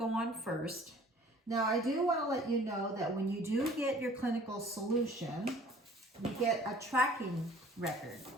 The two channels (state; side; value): normal; both; correlation 0.51